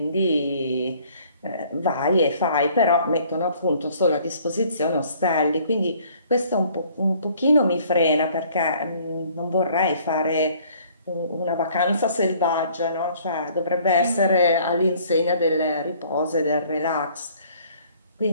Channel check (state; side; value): inverted; both; correlation -0.58